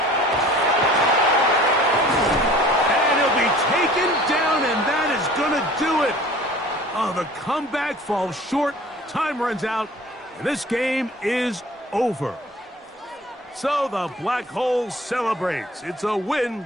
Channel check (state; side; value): normal; both; correlation 0.47